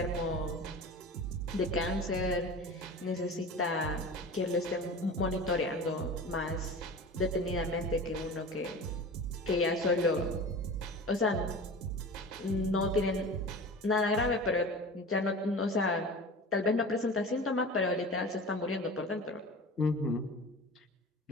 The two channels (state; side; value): normal; both; correlation 0.35